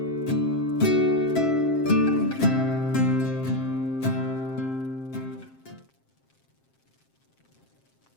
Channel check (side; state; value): right; late; 7.5 ms